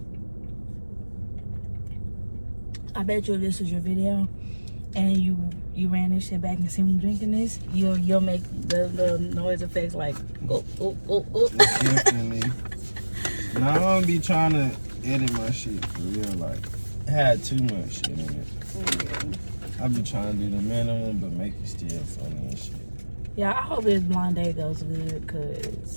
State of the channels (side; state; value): both; inverted; correlation -1.00